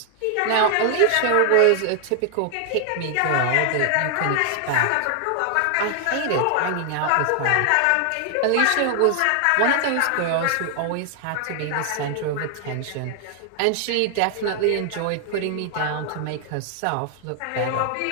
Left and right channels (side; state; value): both; different; correlation 0.00